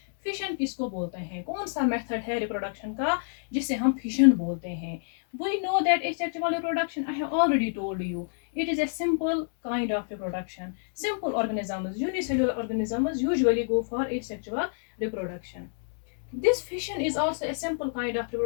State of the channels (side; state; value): right; silent; digital silence